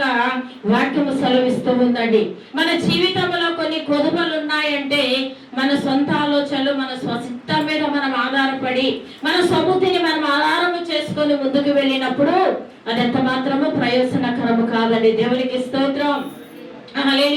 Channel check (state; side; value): identical; both; correlation 1.00